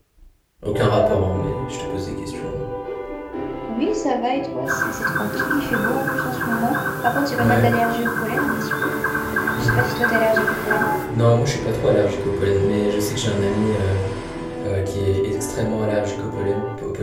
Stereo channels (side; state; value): both; identical; correlation 1.00